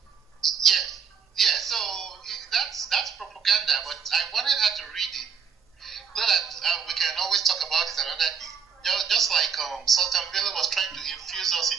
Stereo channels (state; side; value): quieter; left; 6.6 dB